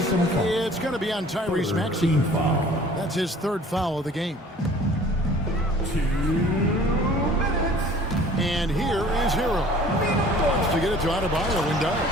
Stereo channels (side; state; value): both; normal; correlation 0.50